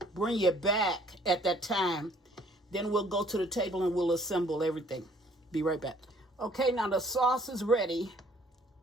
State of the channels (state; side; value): normal; both; correlation 0.60